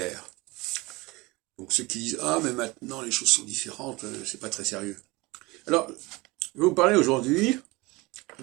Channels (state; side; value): quieter; left; 22.9 dB